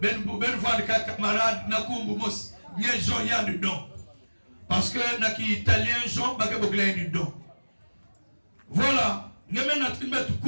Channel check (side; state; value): both; inverted; correlation -1.00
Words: ben van camarade nakumbu mos Nye Jean y a dedans. Parce que naki italien Jean bake bokla dedans. Voilà. Ngeme na trimbet